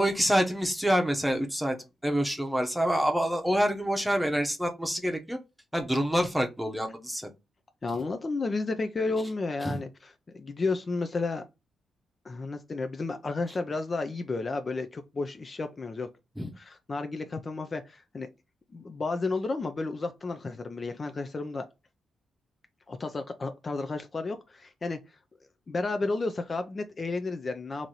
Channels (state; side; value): normal; both; correlation 0.92